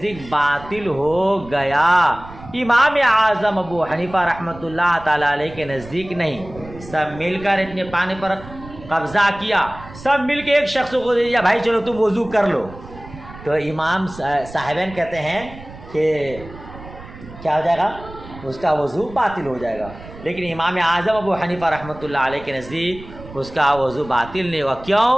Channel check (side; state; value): right; noise; rumble, 17 dB below the sound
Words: باطل ہو گیا۔ امام اعظم ابو حنیفہ رحمۃ اللہ تعالیٰ علیہ کے نزدیک نہیں، سب مل کر اتنے پانی پر قبضہ کیا، سب مل کے ایک شخص کو دے دیا، بھائی چلو تم وضو کر لو، تو امام صاحبین کہتے ہیں کہ کیا ہو جائے گا، اس کا وضو باطل ہو جائے گا۔ لیکن امام اعظم ابو حنیفہ رحمۃ اللہ علیہ کے نزدیک اس کا وضو باطل نہیں ہوا۔ کیوں؟